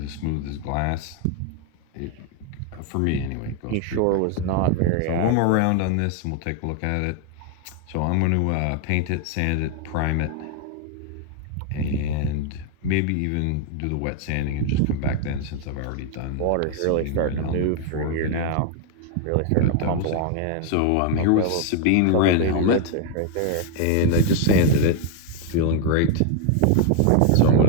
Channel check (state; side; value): different; both; correlation 0.00